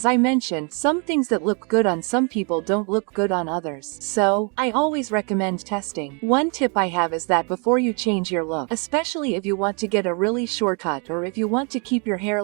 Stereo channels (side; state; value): left; quieter; 35.9 dB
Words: I mentioned, some things that look good on some people don't look good on others. So, I always recommend testing. One tip I have is that before you change your look, especially if you want to get a really short cut or if you want to keep your hair